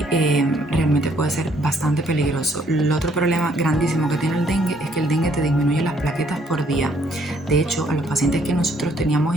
realmente puede ser bastante peligroso. El otro problema grandísimo que tiene el dengue es que el dengue te disminuye las plaquetas por día. De hecho, a los pacientes que nosotros teníamos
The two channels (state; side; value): normal; both; correlation 0.67